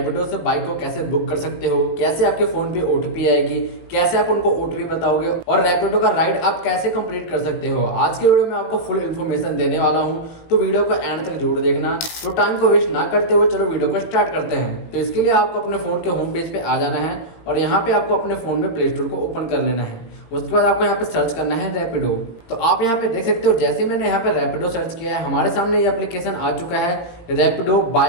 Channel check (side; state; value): right; late; 18 ms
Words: से बाइक को कैसे बुक कर सकते हो, कैसे आपके फ़ोन पे ओटीपी आएगी, कैसे आप उनको ओटीपी बताओगे और रैपिडो का राइड आप कैसे कंप्लीट कर सकते हो। आज के वीडियो में आपको फुल इन्फॉर्मेशन देने वाला हूं, तो वीडियो को एंड तक जरूर देखना। तो टाइम को वेस्ट ना करते हुए चलो वीडियो को स्टार्ट करते हैं। तो इसके लिए आपको अपने फ़ोन के होम पेज पे आ जाना है और यहाँ पे आपको अपने फ़ोन में प्ले स्टोर को ओपन कर लेना है। उसके बाद आपको यहाँ पे सर्च करना है रैपिडो। तो आप यहाँ पे देख सकते हो, जैसे मैंने यहाँ पे रैपिडो सर्च किया है, हमारे सामने ये एप्लीकेशन आ चुका है, Rapido